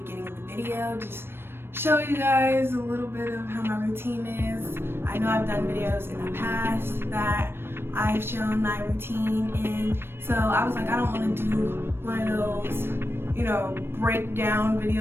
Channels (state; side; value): late; left; 0.11 ms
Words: of the video. Just show you guys a little bit of how my routine is. I know I've done videos in the past that I've shown my routine in, so I was like, I don't want to do one of those, breakdown